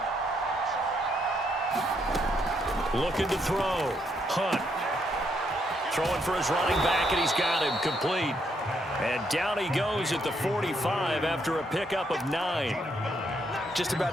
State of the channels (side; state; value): both; normal; correlation 0.75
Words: Looking to throw. Hunt. Throwing for his running back, and he's got him complete. And down he goes at the 45 after a pickup of 9. Just about